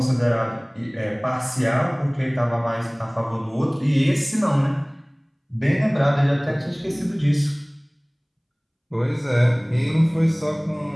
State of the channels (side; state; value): both; identical; correlation 1.00